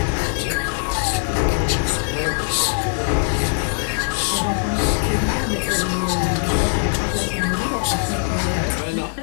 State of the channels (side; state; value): right; silent; digital silence